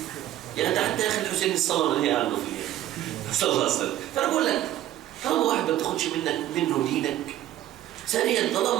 يعني حتى يا أخي الحسين الصلاة اللي هي عنده فيها صلى الله عليه وسلم. فأنا بقول لك طالما واحد ما بتاخدش منه دينك، ثانيا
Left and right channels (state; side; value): quieter; left; 13.2 dB